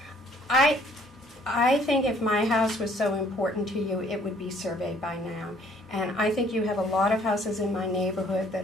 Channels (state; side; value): normal; both; correlation 0.60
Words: I think if my house was so important to you, it would be surveyed by now. And I think you have a lot of houses in my neighborhood